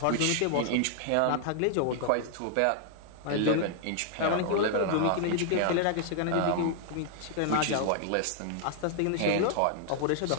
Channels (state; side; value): different; both; correlation -0.01